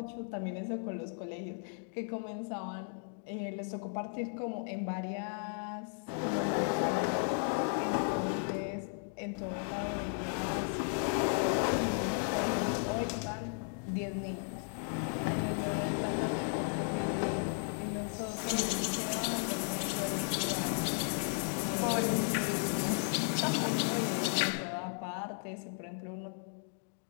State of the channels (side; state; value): right; silent; 54 dB below the other